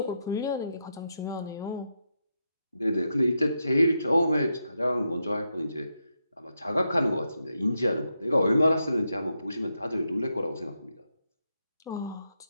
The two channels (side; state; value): both; inverted; correlation -0.84